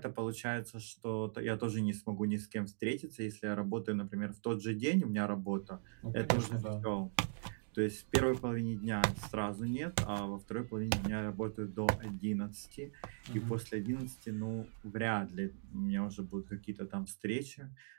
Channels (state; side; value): silent; left; digital silence